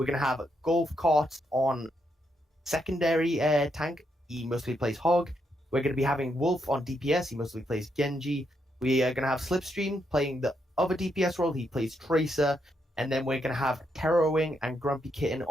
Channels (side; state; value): both; normal; correlation 0.79